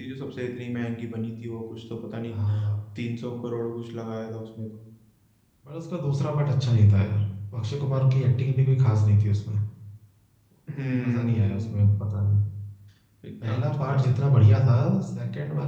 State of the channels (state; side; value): identical; both; correlation 1.00